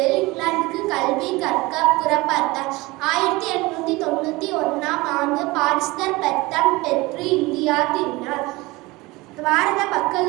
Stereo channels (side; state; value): left; quieter; 22.0 dB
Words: இங்கிலாந்துக்கு கல்வி கற்க புறப்பட்டார். 1891ஆம் ஆண்டு பாரிஸ்டர் பட்டம் பெற்று இந்தியா திரும்பினார். பாரத